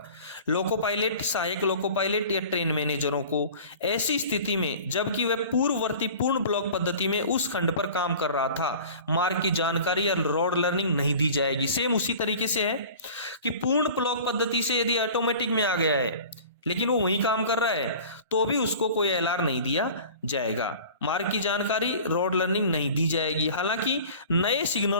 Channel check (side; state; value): both; inverted; correlation -0.42